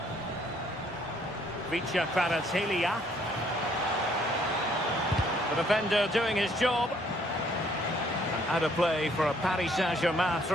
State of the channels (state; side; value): normal; both; correlation 0.65